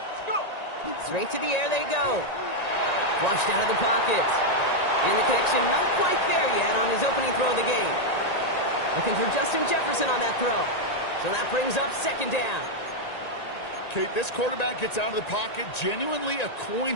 Let's go. Straight to the air they go. Flushed out of the pocket. And the connection not quite there yet on his opening throw of the game. Looking for Justin Jefferson on that throw. So that brings up 2nd down. Kate, this quarterback gets out of the pocket, genuinely a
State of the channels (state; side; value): late; right; 1.9 ms